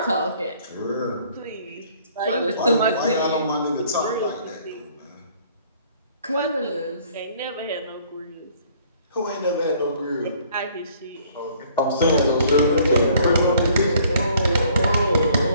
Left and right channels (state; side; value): inverted; both; correlation -0.59